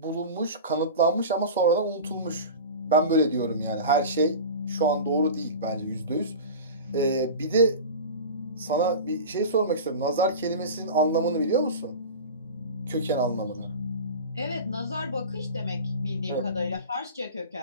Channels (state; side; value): inverted; both; correlation -0.32